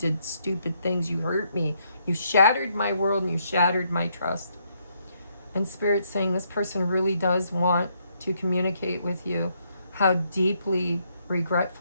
stupid things. You hurt me. You shattered my world and you shattered my trust. And Spirit's saying this person really does want to communicate with you how deeply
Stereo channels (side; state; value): both; inverted; correlation -0.74